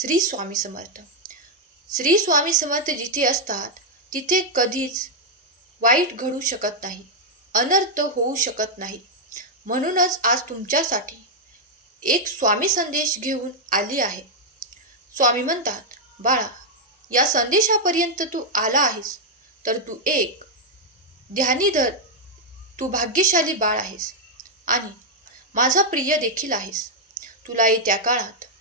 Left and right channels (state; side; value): normal; both; correlation -0.02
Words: स्वामी समर्थ. श्री स्वामी समर्थ जिथे असतात तिथे कधीच वाईट घडू शकत नाही, अनर्थ होऊ शकत नाही. म्हणूनच आज तुमच्यासाठी एक स्वामी संदेश घेऊन आली आहे. स्वामी म्हणतात, बाळा, या संदेशापर्यंत तू आला आहेस तर तू एक ध्यानीधर, तू भाग्यशाली बाळ आहेस आणि माझा प्रिय देखील आहेस. तुला येत्या काळात